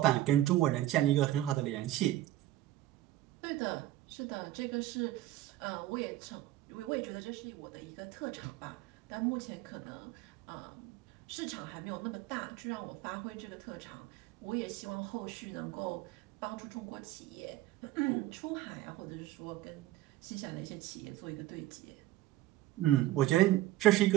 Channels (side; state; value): left; quieter; 15.1 dB